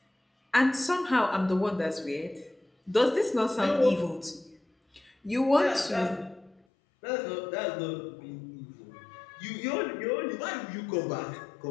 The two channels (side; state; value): right; drops out; at 6.6 s